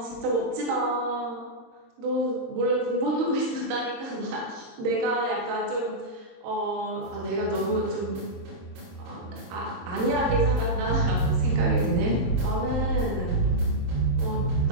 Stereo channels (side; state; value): left; late; 22 ms